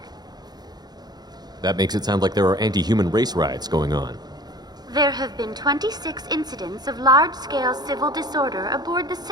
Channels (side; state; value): left; late; 0.20 ms